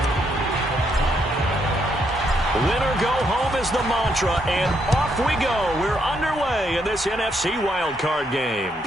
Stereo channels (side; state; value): both; normal; correlation 0.75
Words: Win or go home is the mantra, and off we go. We're underway in this NFC Wild Card game.